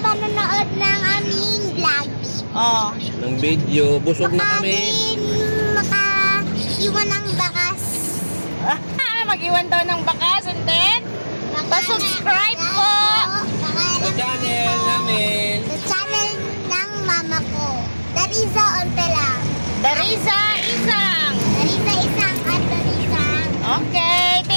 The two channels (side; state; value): both; inverted; correlation -1.00